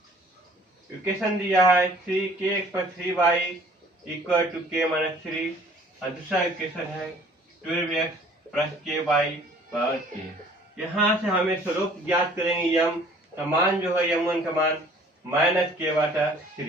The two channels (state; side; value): normal; both; correlation 0.54